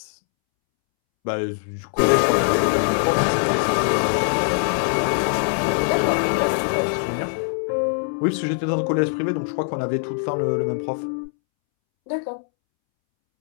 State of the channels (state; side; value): silent; right; 64 dB below the other